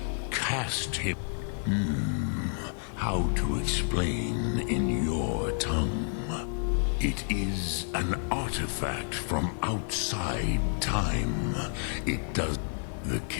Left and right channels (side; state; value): right; silent; digital silence